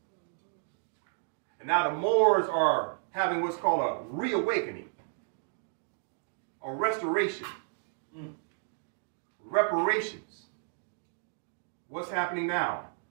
And now the Moors are having what's called a reawakening, a restoration, reparations. What's happening now?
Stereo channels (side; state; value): left; silent; digital silence